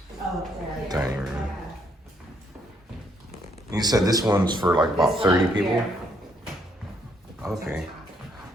dining room. You said this one's for like about 30 people? Okay.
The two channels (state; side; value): normal; both; correlation 0.71